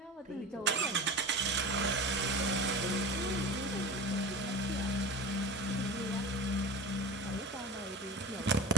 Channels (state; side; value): normal; both; correlation 0.33